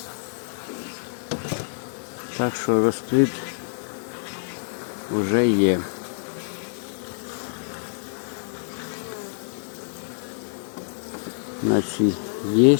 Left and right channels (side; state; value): right; silent; digital silence